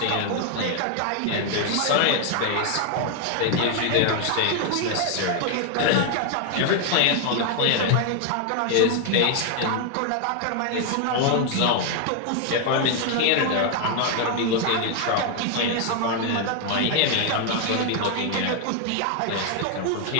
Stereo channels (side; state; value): both; different; correlation 0.00